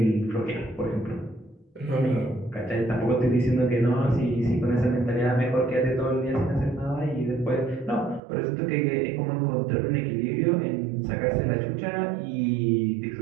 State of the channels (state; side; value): drops out; left; at 8.2 s